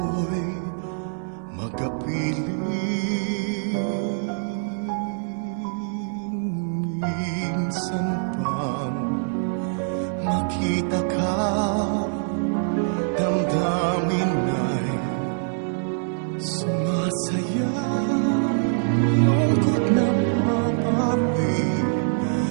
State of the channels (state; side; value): silent; left; 62 dB below the other